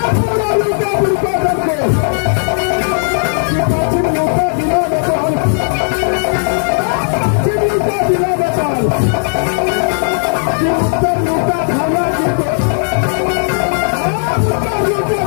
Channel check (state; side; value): silent; right; digital silence